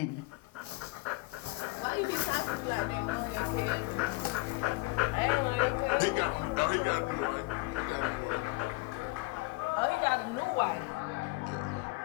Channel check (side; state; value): right; quieter; 23.2 dB